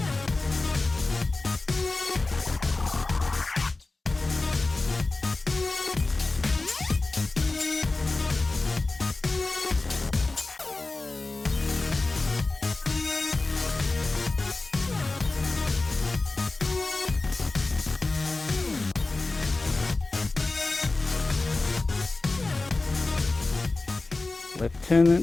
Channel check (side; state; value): right; quieter; 3.3 dB